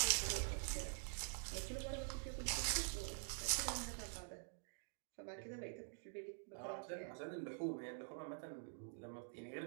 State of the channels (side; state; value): left; silent; digital silence